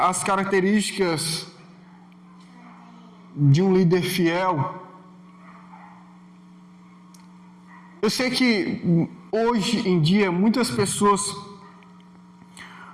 as características de um líder fiel. Eu sei que hoje em dia muitas pessoas,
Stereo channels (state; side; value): identical; both; correlation 1.00